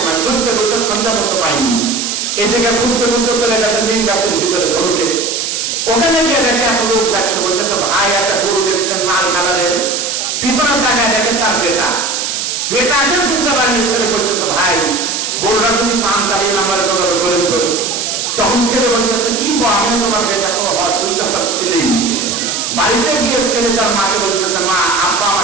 ঘুরতে ঘুরতে সন্ধ্যা করতে পাইনি, এদিকে ঘুরতে ঘুরতে চলে গেছে মেন গাছের ভিতরে ধরুকে। ওখানে গিয়ে দেখে এক লোক দেখছে, বলতেছে ভাই একটা গরু দেখছেন লাল কালারের, পিছনের জায়গায় দেখেন তার বেটাকে চিনতে পারেনি। ছেলে বলতেছে ভাই গরুটা তুমি পান চালিয়ে নাম্বারে কথা করে ধরো। তখন ছেলে বলতেছে কি আমি তোমার বেটা কোনো হয়, তুমি তো আমার ছেলেই। বাড়িতে গিয়ে ছেলে তার মাকে বলতেছে মা আব্বা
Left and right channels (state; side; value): noise; right; hiss, 2 dB below the sound